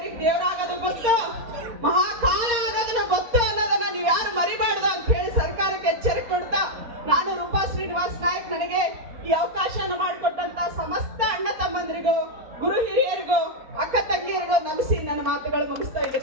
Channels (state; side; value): late; left; 4.3 ms